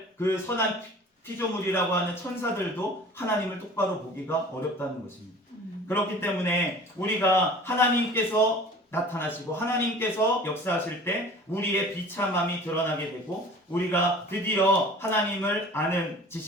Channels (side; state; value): both; normal; correlation 0.44